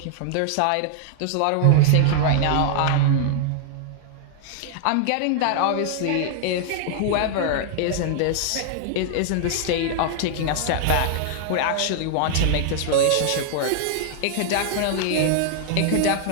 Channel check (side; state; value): both; different; correlation 0.00